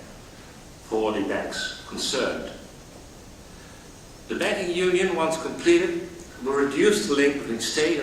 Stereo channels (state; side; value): identical; both; correlation 1.00